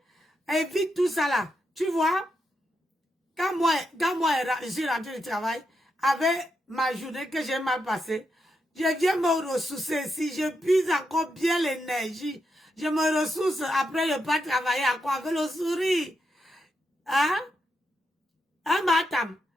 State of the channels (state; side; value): normal; both; correlation 0.84